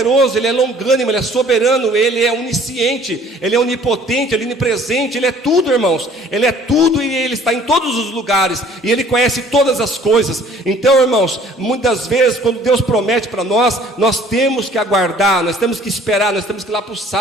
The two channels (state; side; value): normal; both; correlation 0.54